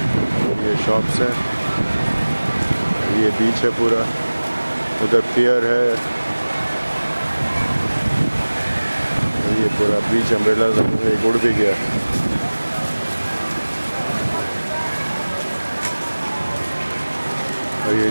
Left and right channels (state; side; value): inverted; both; correlation -1.00